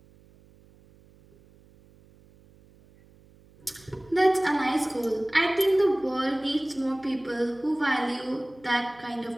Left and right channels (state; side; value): noise; right; hum, 27 dB below the sound